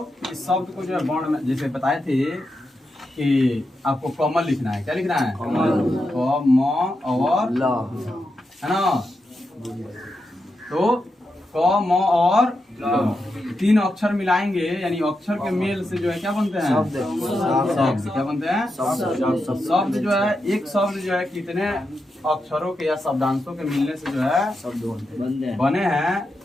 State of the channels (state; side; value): normal; both; correlation 0.87